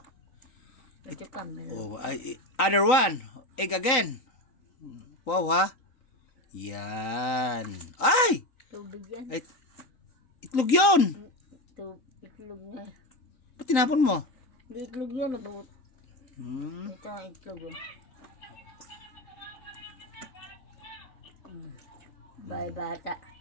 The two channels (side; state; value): right; late; 3.9 ms